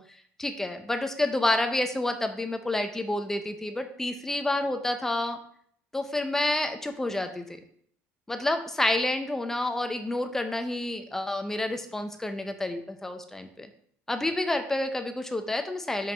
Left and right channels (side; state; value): both; normal; correlation 0.88